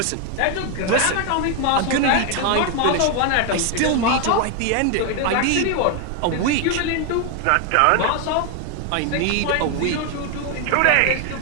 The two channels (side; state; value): both; different; correlation 0.01